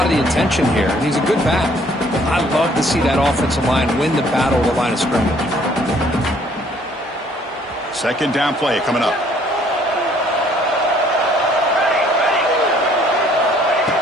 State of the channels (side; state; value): both; normal; correlation 0.61